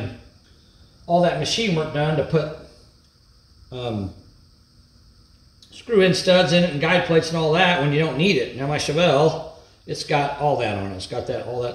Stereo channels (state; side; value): identical; both; correlation 1.00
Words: all that machine work done to put screw-in studs in it and guide plates and all that when you don't need it. Now my Chevelle, it's got all that on it. It's got all